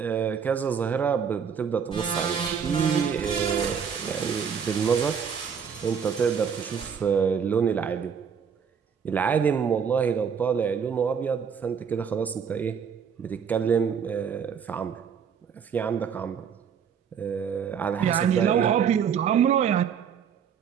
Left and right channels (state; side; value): quieter; left; 7.1 dB